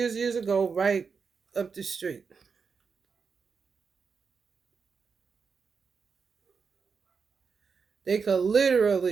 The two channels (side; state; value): left; quieter; 5.5 dB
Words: ago, right up the street. They could